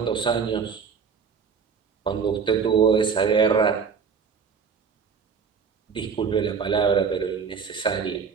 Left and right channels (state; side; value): quieter; left; 6.1 dB